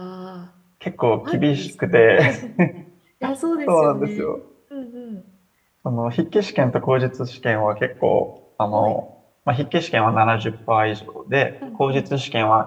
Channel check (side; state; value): both; identical; correlation 1.00